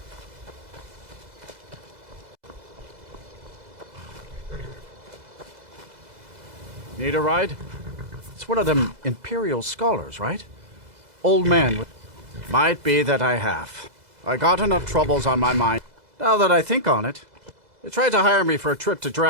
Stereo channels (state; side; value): late; left; 2.0 ms